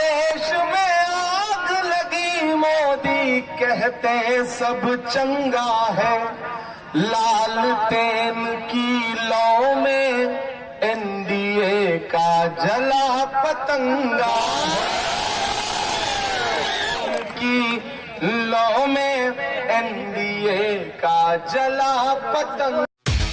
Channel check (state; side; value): identical; both; correlation 1.00